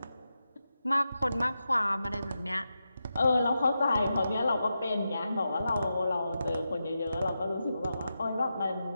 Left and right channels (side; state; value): both; inverted; correlation -0.89